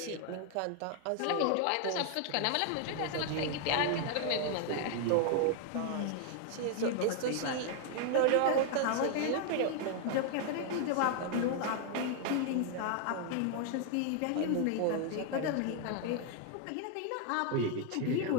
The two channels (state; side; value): different; both; correlation 0.00